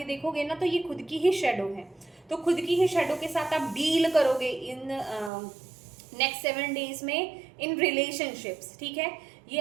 देखोगे ना तो ये खुद की ही शेडो है, तो खुद की ही शेडो के साथ आप डील करोगे इन नेक्स्ट 7 डेज में इन रिलेशनशिप्स, ठीक है।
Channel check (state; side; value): drops out; left; at 5.3 s